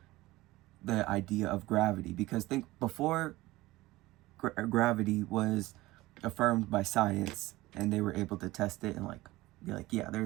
the idea of gravity, because think before gravity was affirmed by science and they were able to test it and like be like, yeah,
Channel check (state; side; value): quieter; left; 18.7 dB